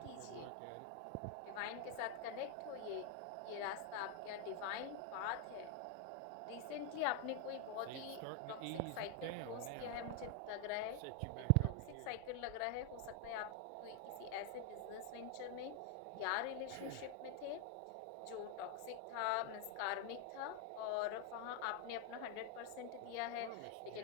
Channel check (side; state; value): both; different; correlation 0.01